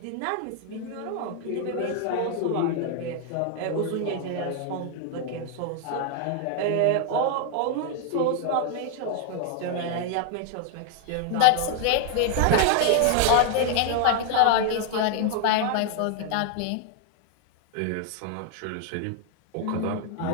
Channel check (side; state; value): both; different; correlation 0.01